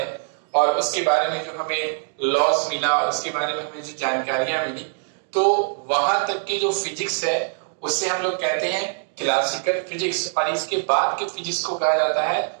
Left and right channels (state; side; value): silent; left; digital silence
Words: और उसके बारे में जो हमें लॉस मिला और उसके बारे में हमें जो जानकारियां मिली, तो वहां तक की जो फिजिक्स है उससे हम लोग कहते हैं क्लासिकल फिजिक्स। और इसके बाद के फिजिक्स को कहा जाता है